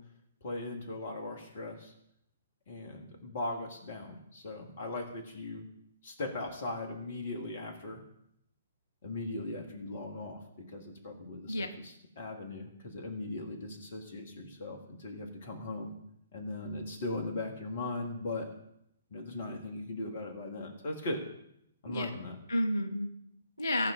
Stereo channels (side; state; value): both; inverted; correlation -0.71